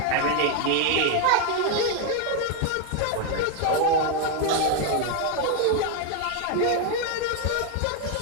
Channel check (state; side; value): different; both; correlation 0.01